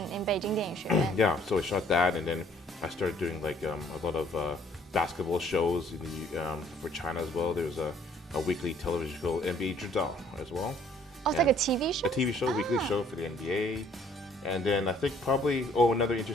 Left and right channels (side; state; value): both; normal; correlation 0.60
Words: Beijing 电影学院 Yeah, so I shot that, and then I started doing a lot of basketball shows for China as well. There's a weekly television show, NBA 知道 as well. Oh, it's like a TV show? A TV show, weekly show for the NBA. And then I think probably, another